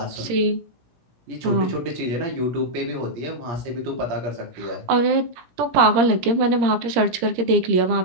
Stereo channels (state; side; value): late; left; 17 ms